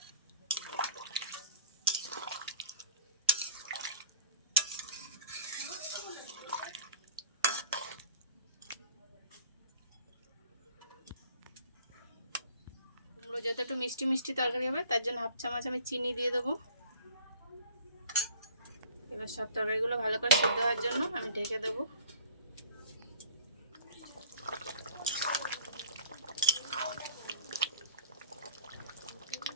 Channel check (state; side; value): inverted; both; correlation -0.48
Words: কুমড়ো যত একটু মিষ্টি মিষ্টি তরকারি হবে তার জন্য 1/2 চামচ আমি চিনি দিয়ে দেবো। এবার সব তরকারিগুলো ভালো করে সিদ্ধ হওয়ার জন্য আমি ঢেকে দেবো।